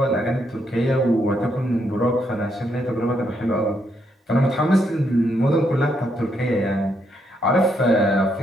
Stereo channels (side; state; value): both; normal; correlation 0.76